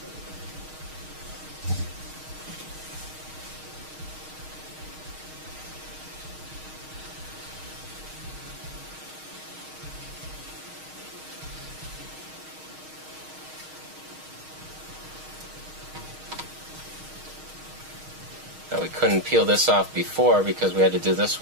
Now we couldn't peel this off before because we had to do this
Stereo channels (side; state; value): left; late; 6.4 ms